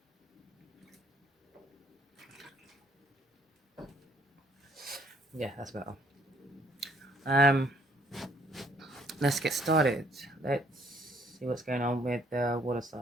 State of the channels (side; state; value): both; normal; correlation 0.63